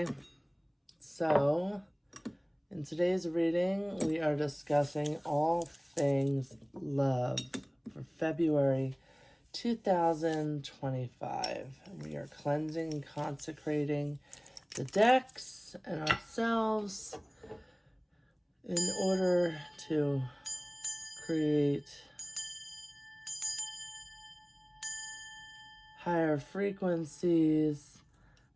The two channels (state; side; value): identical; both; correlation 1.00